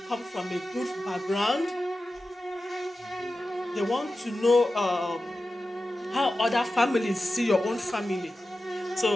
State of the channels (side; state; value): both; normal; correlation 0.93